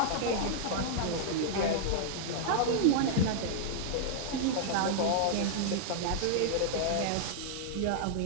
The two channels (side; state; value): both; different; correlation -0.01